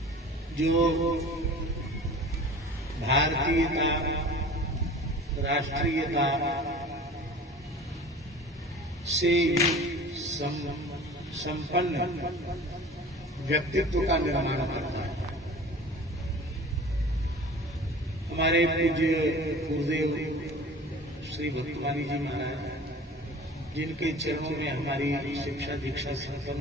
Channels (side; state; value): both; normal; correlation 0.42